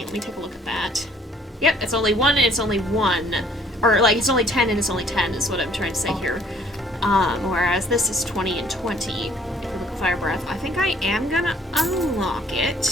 Let me take a look at that. Yep, it's only 1 and it's only 1. Or, like, it's only 10 and it's only 10 is what I'm trying to say here. Whereas this is 20 and 20. If you look at Fire Breath, I think I am gonna unlock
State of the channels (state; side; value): normal; both; correlation 0.59